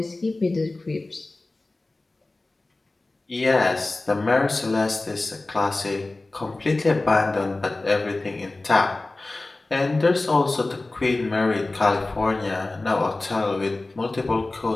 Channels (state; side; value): quieter; right; 3.1 dB